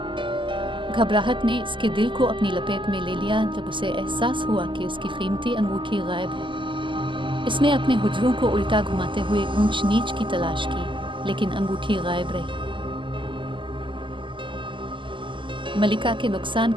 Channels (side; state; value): left; late; 0.24 ms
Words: घबराहट ने इसके दिल को अपनी लपेट में ले लिया जब उसे एहसास हुआ कि उसकी कीमती अंगूठी गायब है। इसने अपने हुजरों को उल्टा घुमाते हुए ऊंच नीच की तलाश की, लेकिन अंगूठी गायब रही। मलिका के नुकसान